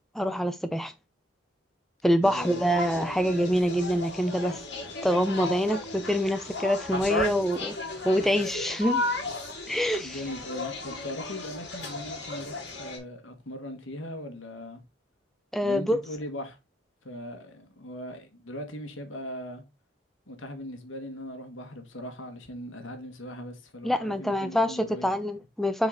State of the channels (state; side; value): normal; both; correlation 0.75